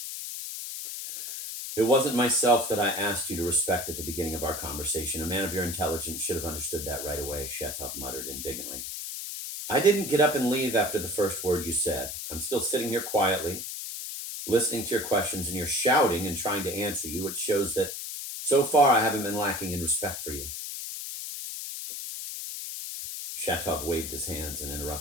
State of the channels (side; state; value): left; noise; hiss, 6 dB below the sound